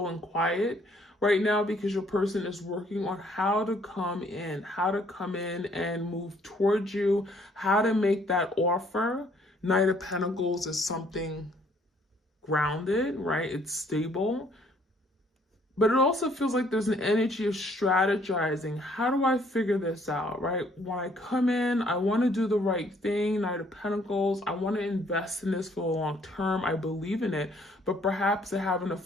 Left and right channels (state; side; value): normal; both; correlation 0.63